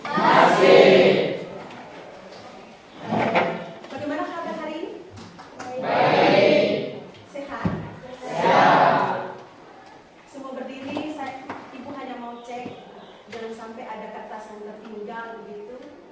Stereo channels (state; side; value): identical; both; correlation 1.00